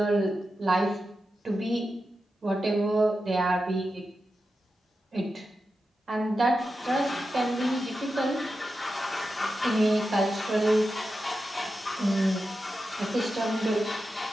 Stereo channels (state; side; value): normal; both; correlation 0.90